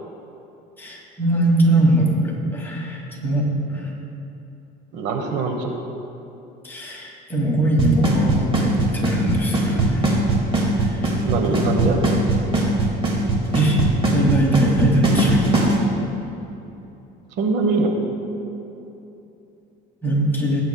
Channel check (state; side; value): normal; both; correlation 0.46